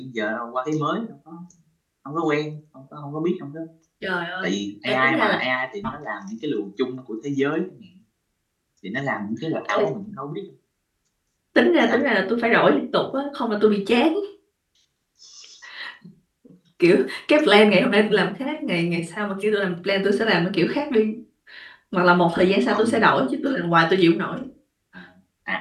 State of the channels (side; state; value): both; identical; correlation 1.00